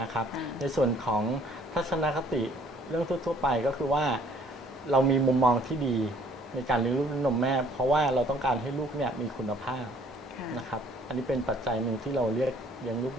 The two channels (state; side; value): normal; both; correlation 0.59